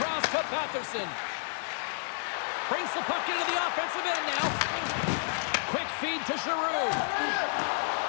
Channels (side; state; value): right; silent; digital silence